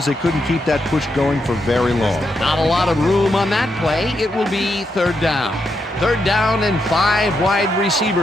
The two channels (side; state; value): both; normal; correlation 0.82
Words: they couldn't keep that push going for very long. Not a lot of room on that play. It will be third down. Third down, and 5 wide